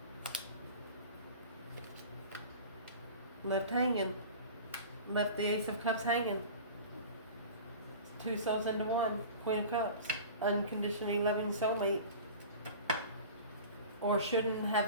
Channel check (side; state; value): both; inverted; correlation -0.38